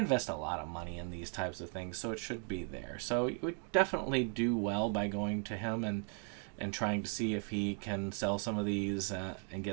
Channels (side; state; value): left; quieter; 39.6 dB